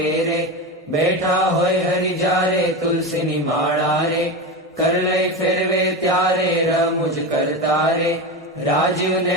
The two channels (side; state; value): both; normal; correlation 0.20